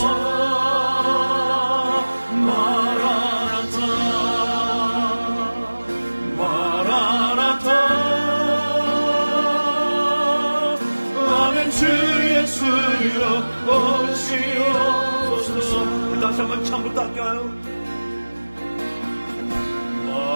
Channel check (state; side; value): inverted; both; correlation -1.00